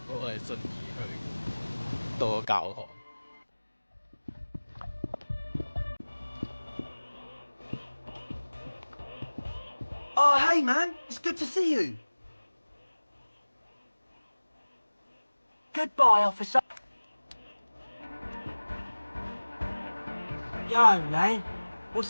我係順而去到個教堂。 Oh, hey, man. It's good to see you. Goodbye, officer. Yo, man.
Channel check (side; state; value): both; inverted; correlation -1.00